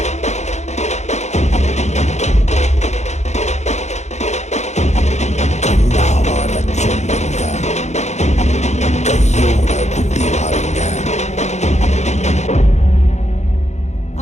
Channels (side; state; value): right; late; 0.33 ms